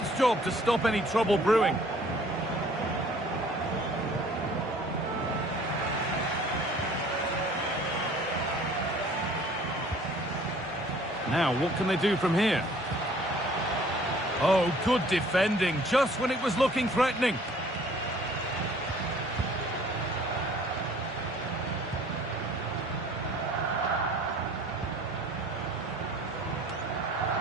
job to stop any trouble brewing. Now, what can they do from here? Oh, good defending, just when it was looking threatening.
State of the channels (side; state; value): both; normal; correlation 0.54